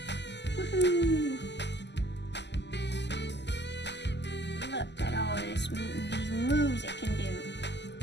Woohoo! Look at all of these moves it can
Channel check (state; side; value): late; right; 0.50 ms